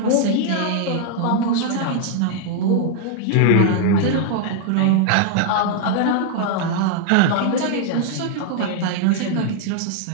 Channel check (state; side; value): different; both; correlation 0.00